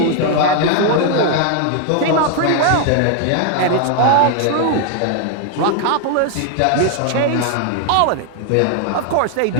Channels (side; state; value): both; different; correlation 0.00